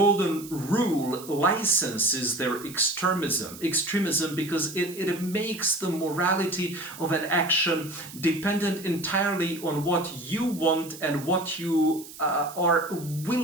Rule licenses their extremism because it makes the morality of an action dependent entirely on what you want and what you are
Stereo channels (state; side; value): noise; right; hiss, 16 dB below the sound